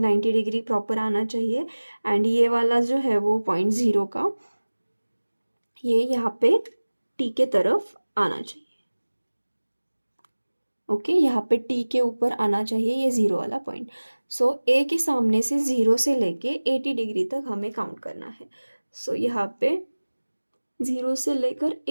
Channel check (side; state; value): both; inverted; correlation -1.00